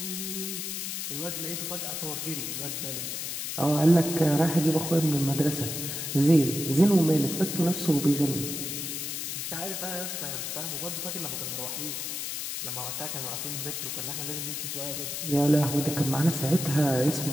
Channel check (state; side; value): noise; left; hiss, 4 dB below the sound